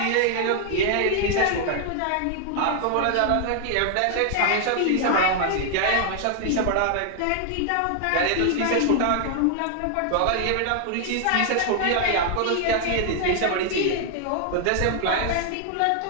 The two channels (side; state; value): both; different; correlation 0.00